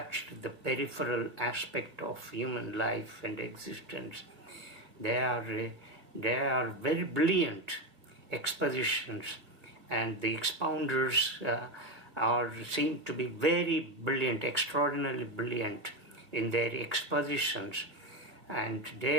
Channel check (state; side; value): late; left; 2.5 ms